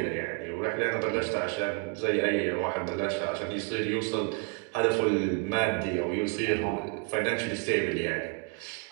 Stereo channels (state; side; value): quieter; left; 38.0 dB